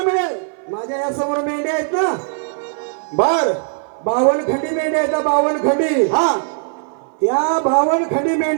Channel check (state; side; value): silent; left; 58 dB below the other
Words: मिळेल. माझ्या या समोर मेंढ्या आहेत ना बर 52 खंडी मेंढ्या आहेत 52 खंडी. हा त्या 52 खंडी